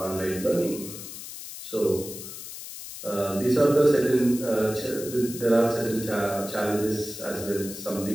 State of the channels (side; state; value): left; noise; hiss, 11 dB below the sound